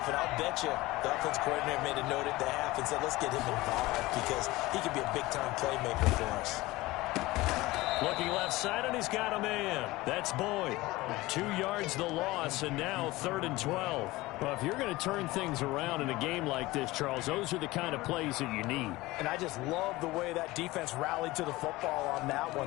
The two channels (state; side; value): quieter; right; 19.6 dB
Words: and I'll bet you the offense coordinator made a note at the half and said, let's get him involved because he could be a big-time playmaker for us. Looking left side, and he's got a man. That's Boyd. 2 yards the loss, and now 3rd and 12. Well, if you're going to turn things around in a game like this, Charles, those are the kind of plays that you need. And I just love the way that defense rallied to the football on that